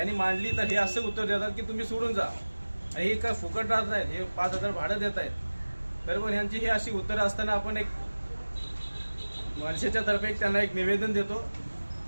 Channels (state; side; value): inverted; both; correlation -1.00